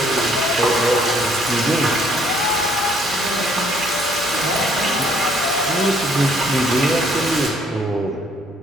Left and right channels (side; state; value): both; normal; correlation 0.64